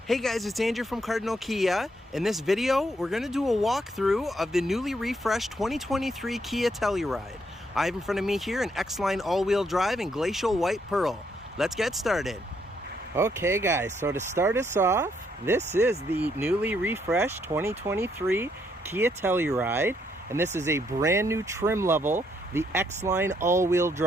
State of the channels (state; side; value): normal; both; correlation 0.73